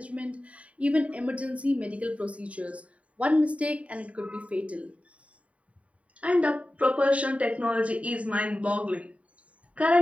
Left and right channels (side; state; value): left; late; 0.065 ms